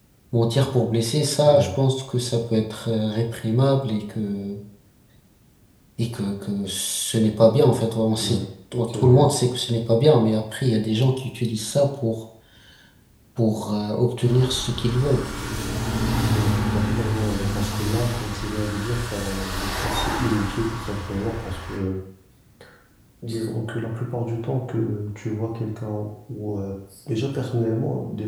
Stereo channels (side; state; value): both; identical; correlation 1.00